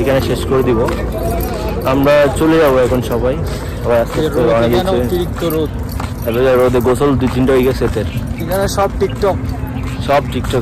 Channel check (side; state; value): both; identical; correlation 1.00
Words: এখানে শেষ করে দিব, আমরা চলে যাবো এখন সবাই। রোদে গোসল 2-3টা হয়ে গেছে। এখানে সব